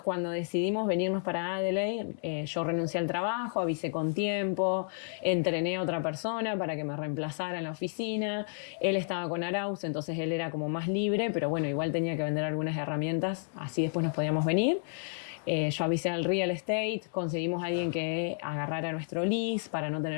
cuando decidimos venirnos para Adelaide, yo renuncié al trabajo, avisé con tiempo, entrené a otra persona para que me reemplazara en la oficina. Él estaba con Arauz, entonces él era como más libre, pero bueno, igual tenía que vender algunas herramientas, así después nos podíamos venir. Yo avisé al real estate, conseguimos a alguien que agarrara nuestro lease para no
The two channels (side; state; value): right; silent; digital silence